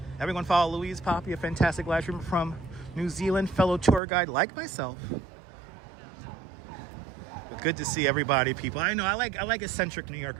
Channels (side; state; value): left; drops out; at 4.0 s